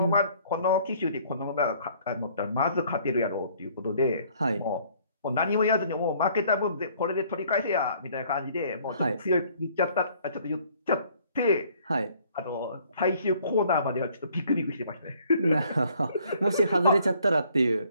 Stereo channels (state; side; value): inverted; both; correlation -0.60